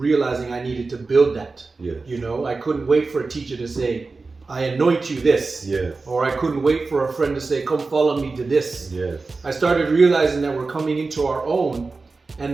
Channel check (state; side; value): quieter; left; 3.9 dB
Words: I needed to build that. Yes. You know, I couldn't wait for a teacher to say, I anoint you this. Yes. Or I couldn't wait for a friend to say, come follow me to this. Yes. I started realizing that we're coming into our own,